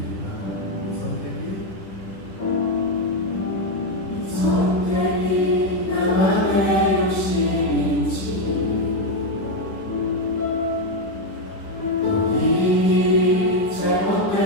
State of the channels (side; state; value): right; late; 10 ms